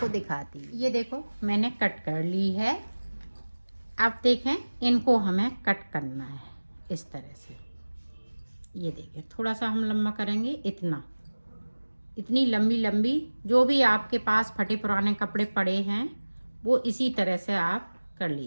दिखाती हूँ। ये देखो, मैंने कट कर ली है। अब देखें, इनको हमें कट करना है इस तरह से। ये देखें, थोड़ा सा हम लंबा करेंगे, इतनी लंबी लंबी। जो भी आपके पास फटे पुराने कपड़े पड़े हैं वो इसी तरह से आप कर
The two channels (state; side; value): inverted; both; correlation -1.00